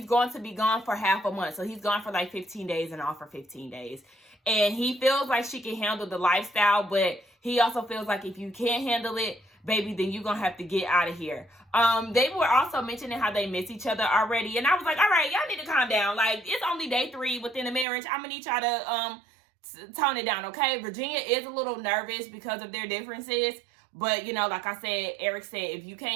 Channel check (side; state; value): left; drops out; at 17.9 s